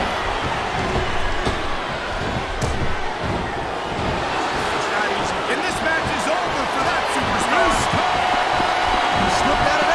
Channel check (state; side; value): identical; both; correlation 1.00